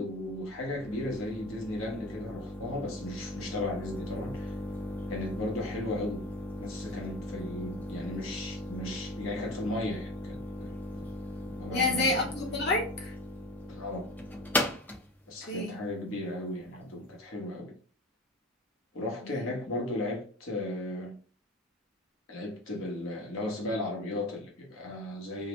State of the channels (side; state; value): both; normal; correlation 0.35